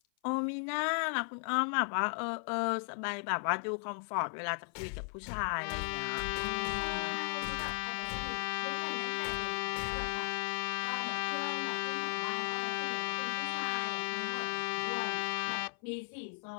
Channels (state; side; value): silent; right; 54 dB below the other